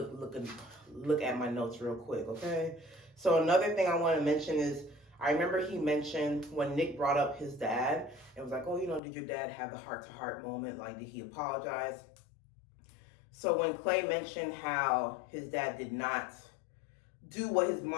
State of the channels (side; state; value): right; drops out; at 9.0 s